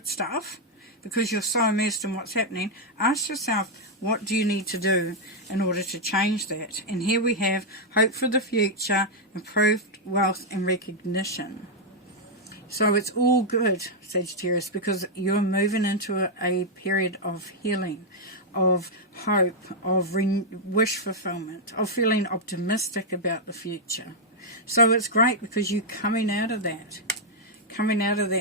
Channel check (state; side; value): normal; both; correlation -0.03